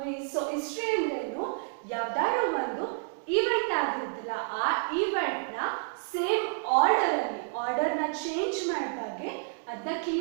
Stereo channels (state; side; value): silent; left; digital silence